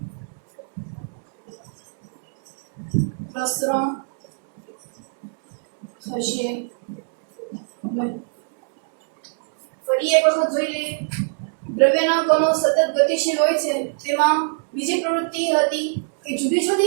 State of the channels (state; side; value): silent; left; 64 dB below the other